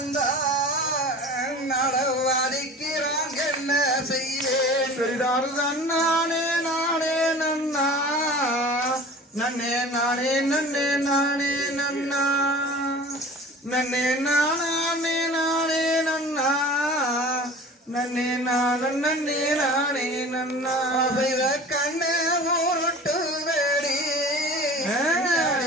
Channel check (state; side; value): normal; both; correlation 0.41